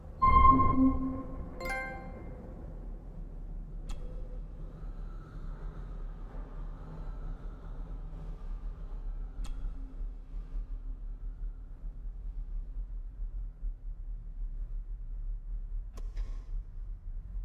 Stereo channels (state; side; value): identical; both; correlation 1.00